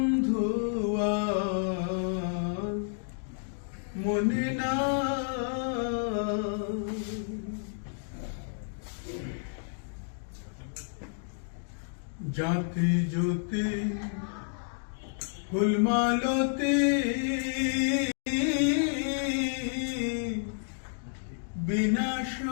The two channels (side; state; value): right; silent; digital silence